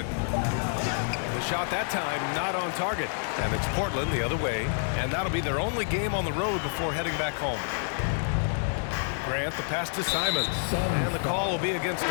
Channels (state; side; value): silent; right; 59 dB below the other